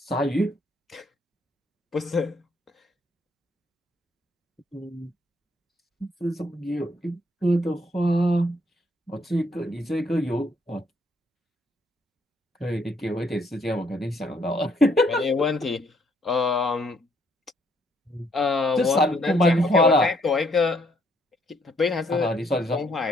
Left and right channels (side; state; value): both; normal; correlation 0.69